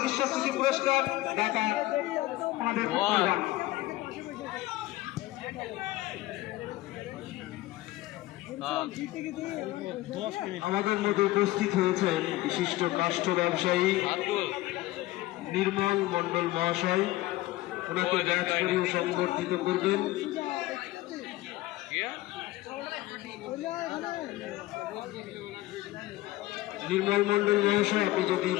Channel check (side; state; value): right; quieter; 17.6 dB